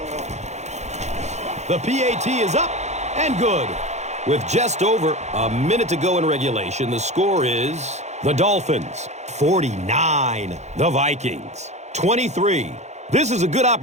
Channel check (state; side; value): late; left; 0.33 ms